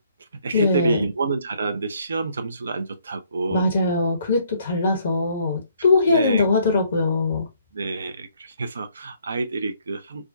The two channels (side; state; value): both; inverted; correlation -0.66